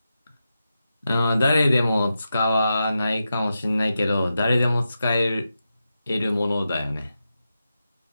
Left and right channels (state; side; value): inverted; both; correlation -0.89